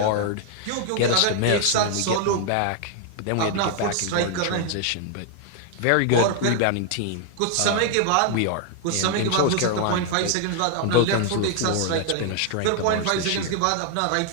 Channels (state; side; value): different; both; correlation 0.00